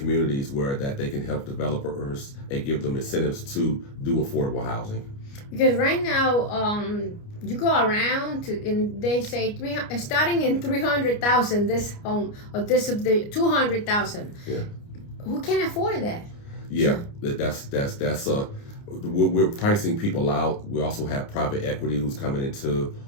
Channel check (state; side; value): late; right; 29 ms